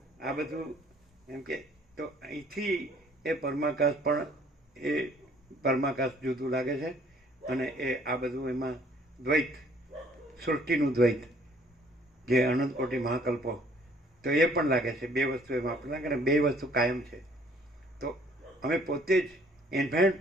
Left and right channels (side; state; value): both; normal; correlation 0.60